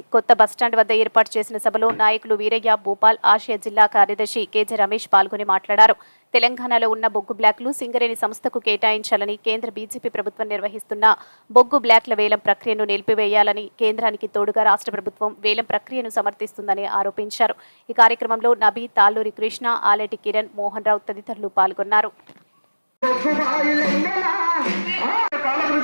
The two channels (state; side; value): inverted; both; correlation -1.00